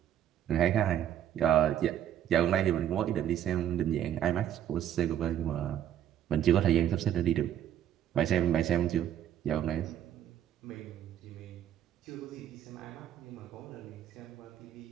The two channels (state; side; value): quieter; left; 10.6 dB